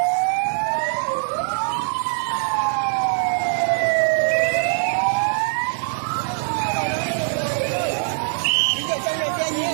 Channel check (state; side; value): silent; left; 64 dB below the other